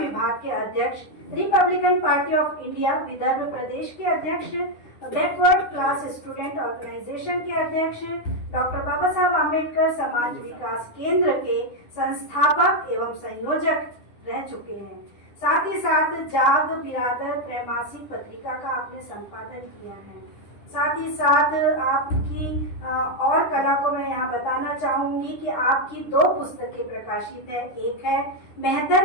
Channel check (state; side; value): late; right; 10 ms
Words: के अध्यक्ष, Republican party of India Vidarbha प्रदेश के अध्यक्ष, बैकवर्ड क्लास स्टूडेंट ऑर्गेनाइजेशन के अध्यक्ष, डॉक्टर बाबा साहब आम्बेडकर समाज विकास केंद्र के संस्थापक एवं संयोजक रह चुके हैं। साथ ही साथ जाग बिरादर त्रैमासिक पत्रिका का आपने संपादन किया है। साथ ही साथ आपकी और कला को मैं यहाँ बताना चाहूँगी कि आपकी 2 पुस्तकें प्रकाशित है। एक है